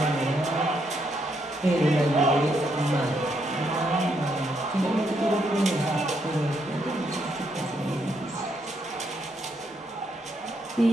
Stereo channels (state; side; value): normal; both; correlation 0.76